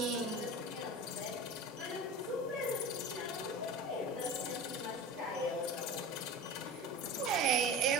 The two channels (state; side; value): normal; both; correlation 0.32